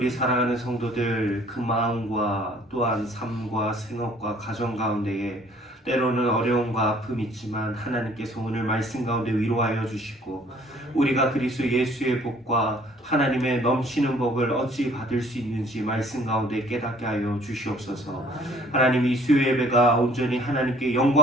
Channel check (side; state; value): both; normal; correlation 0.57